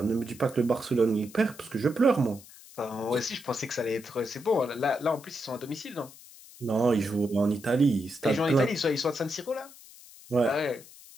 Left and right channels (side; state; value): left; noise; hiss, 20 dB below the sound